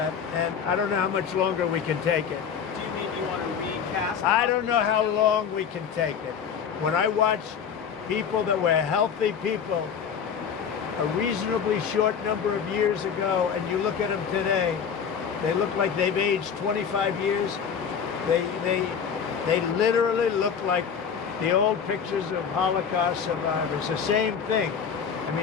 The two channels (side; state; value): right; quieter; 7.1 dB